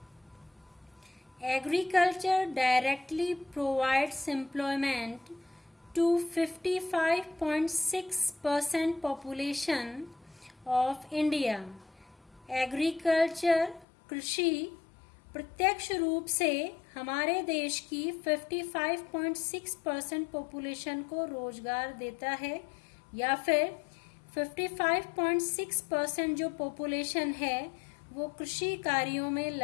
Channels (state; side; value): drops out; right; at 13.9 s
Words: Agriculture directly provides employment to 55.6% population of India. Agriculture कृषि प्रत्यक्ष रूप से हमारे देश की 55.6% पॉपुलेशन को रोजगार देता है, या फिर 55.6% जो पॉपुलेशन है वो कृषि कार्यों में